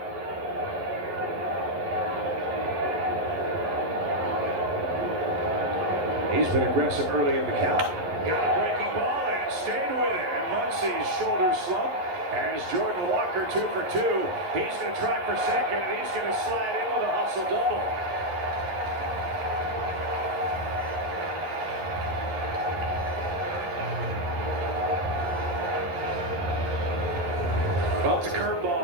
He's been aggressive early in the count. Got a breaking ball and stayed with it. And Muncie's shoulder slump as Jordan Walker 2 for 2. He's going to try for second, and he's going to slide in with a hustle double. Well, it's a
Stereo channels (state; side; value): late; left; 11 ms